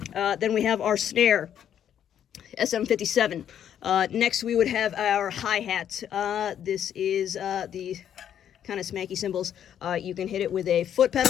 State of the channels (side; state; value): right; quieter; 9.6 dB